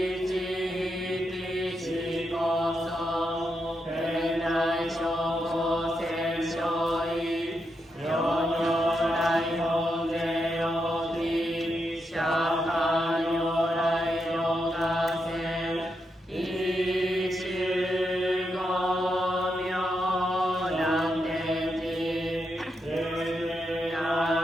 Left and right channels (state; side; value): normal; both; correlation 0.84